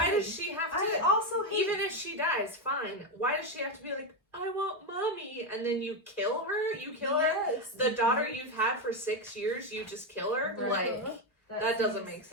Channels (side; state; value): both; normal; correlation 0.08